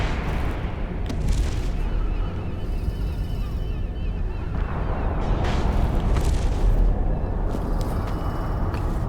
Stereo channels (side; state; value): both; identical; correlation 1.00